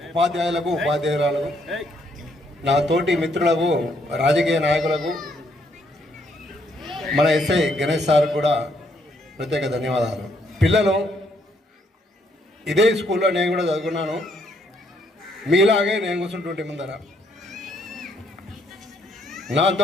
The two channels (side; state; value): both; normal; correlation 0.71